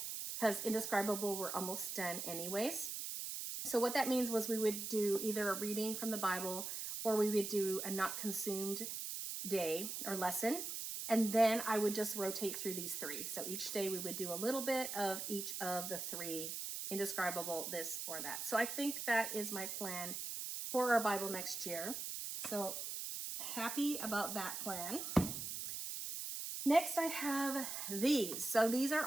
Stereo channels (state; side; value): noise; right; hiss, 5 dB below the sound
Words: because Indescribable we're almost done anyways. So what that means was we would do either a reading from the Bible, or we would do a not consumed day or lesson. And then I would just rotate through these 3. So each day we would do a little bit of each of the 3, Indescribable, this or that. So I think that is my plan for our Bible next year. So happy about that plan. Next, I have these. So these are